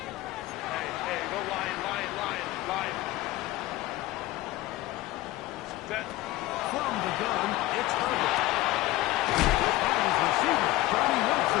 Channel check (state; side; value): quieter; right; 17.2 dB